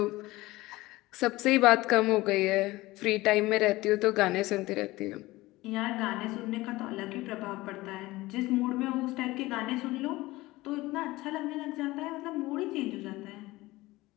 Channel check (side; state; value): right; quieter; 19.3 dB